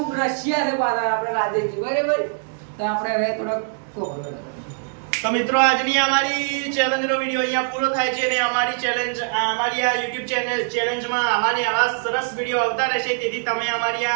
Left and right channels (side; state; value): left; silent; 60 dB below the other